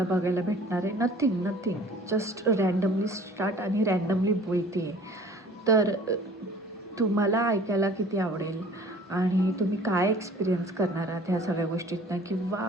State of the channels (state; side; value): normal; both; correlation 0.49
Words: बघायला भेटणार आहे. नथिंग जस्ट रँडमली स्टार्ट आणि रँडमली बोलते आहे. तर तुम्हाला ऐकायला किती आवडेल आणि तुम्ही काय एक्सपिरियन्स करणार आहात ह्या सगळ्या गोष्टीतनं,